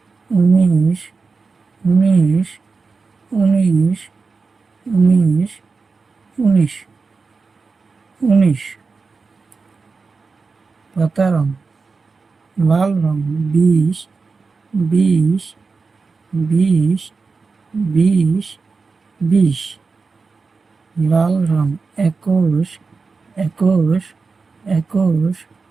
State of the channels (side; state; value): left; quieter; 4.4 dB